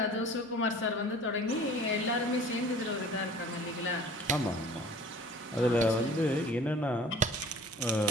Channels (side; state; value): both; normal; correlation 0.47